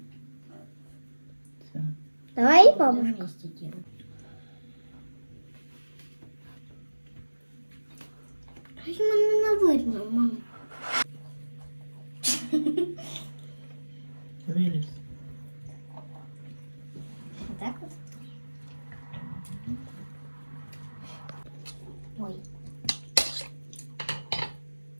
Все. Давай, бабушка. Щось мене не видно, мама. Виліз. Так от? Ой.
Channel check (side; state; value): both; inverted; correlation -1.00